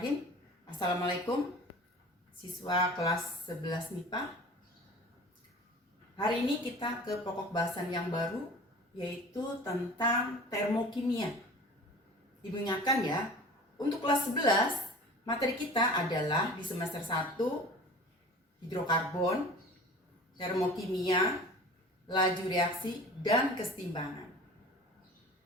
Assalamualaikum siswa kelas 11 MIPA. Hari ini kita ke pokok bahasan yang baru, yaitu tentang termokimia. Ibu ingatkan ya, untuk kelas 11 materi kita adalah di semester 1 hidrokarbon, termokimia, laju reaksi, dan kesetimbangan.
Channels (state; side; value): normal; both; correlation 0.41